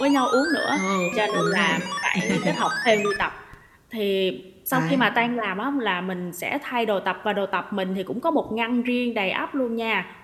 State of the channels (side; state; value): both; identical; correlation 1.00